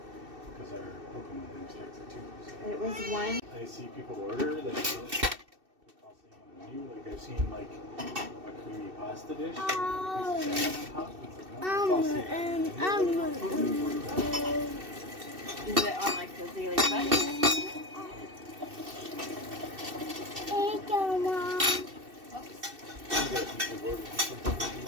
It was one. I see people order that cost on the menu. Like I've seen like a creamy pasta dish. Is it on like the daily budget?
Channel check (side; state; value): left; late; 2.7 ms